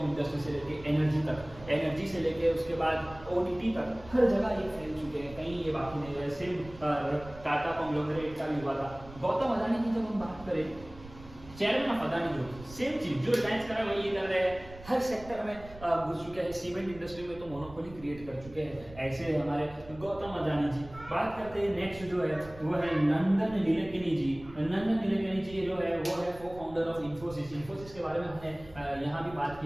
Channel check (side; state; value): right; noise; rumble, 18 dB below the sound